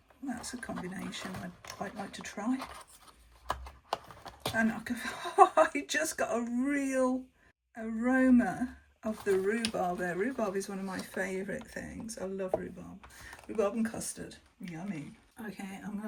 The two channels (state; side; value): identical; both; correlation 1.00